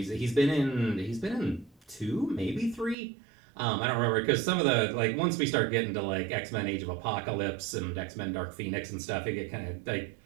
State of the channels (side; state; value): left; drops out; at 3.0 s